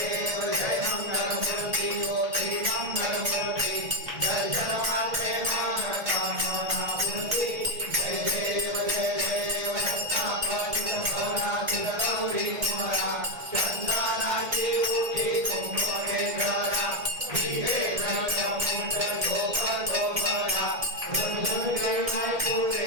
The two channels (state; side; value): late; left; 1.9 ms